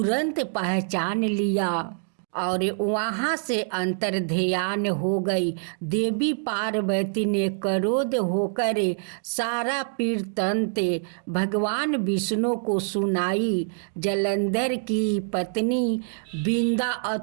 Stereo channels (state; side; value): silent; left; digital silence